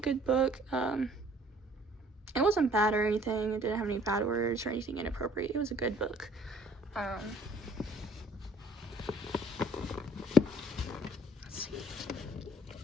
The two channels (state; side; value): normal; both; correlation 0.58